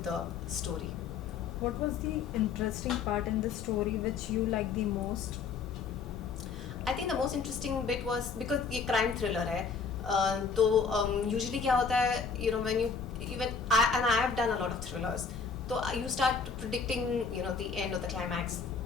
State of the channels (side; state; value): right; quieter; 5.5 dB